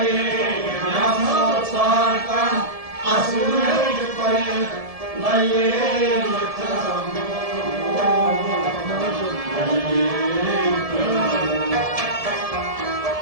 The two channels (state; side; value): late; left; 1.7 ms